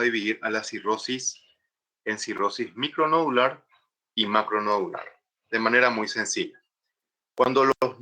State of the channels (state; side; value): identical; both; correlation 1.00